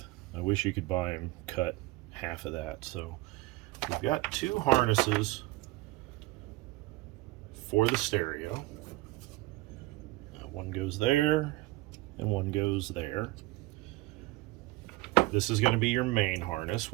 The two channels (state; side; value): quieter; left; 19.9 dB